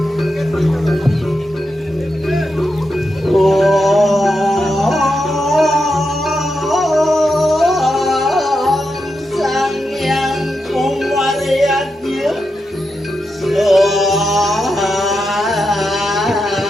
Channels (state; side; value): normal; both; correlation 0.86